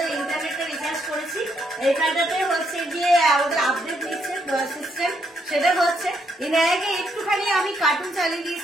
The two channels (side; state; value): both; normal; correlation 0.75